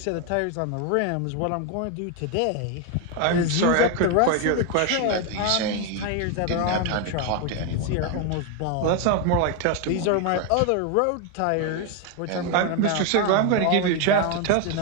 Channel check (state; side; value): different; both; correlation 0.01